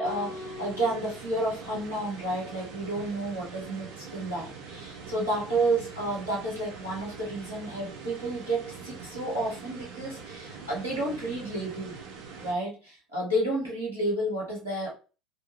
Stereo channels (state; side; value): normal; both; correlation 0.49